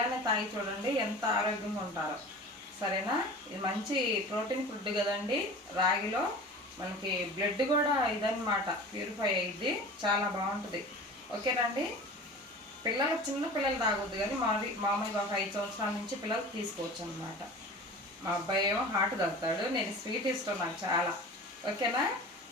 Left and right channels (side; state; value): both; normal; correlation 0.38